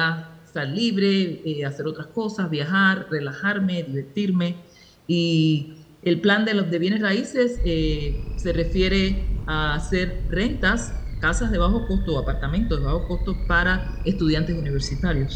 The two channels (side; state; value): both; identical; correlation 1.00